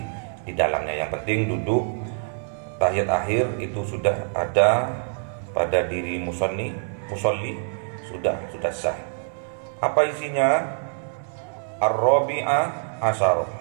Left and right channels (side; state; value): left; silent; digital silence